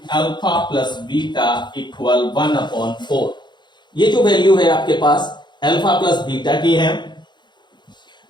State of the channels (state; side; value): late; right; 0.22 ms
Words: alpha plus beta equal 1/4। ये जो वैल्यू है आपके पास अल्फा प्लस बीटा की है।